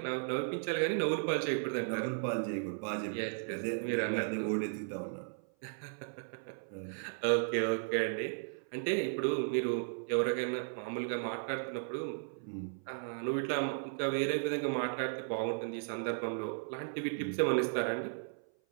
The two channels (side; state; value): left; silent; 54 dB below the other